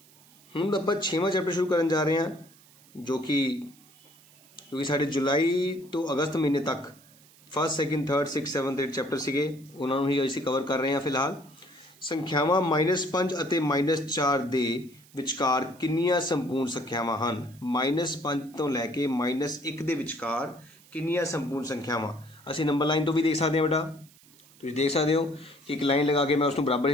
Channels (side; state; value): right; noise; hiss, 26 dB below the sound